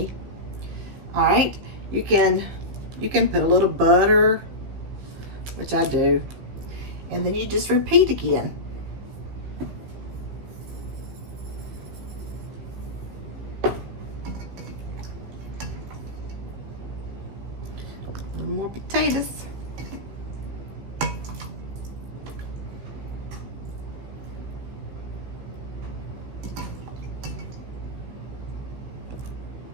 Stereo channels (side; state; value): left; late; 15 ms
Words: All right, you can put a little butter, which I do, and then you just repeat again. A little more potatoes.